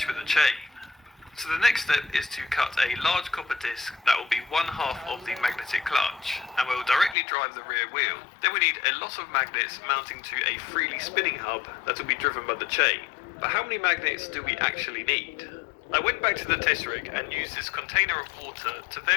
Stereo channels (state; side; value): drops out; right; at 7.2 s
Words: with the chain. So the next step is to cut a large copper disc that will be 1/2 of the magnetic clutch and will directly drive the rear wheel. Then we need a lot of magnets mounting to a freely spinning hub that will be driven by the chain. But how many magnets do we actually need? I went back to the test rig and used this container of water to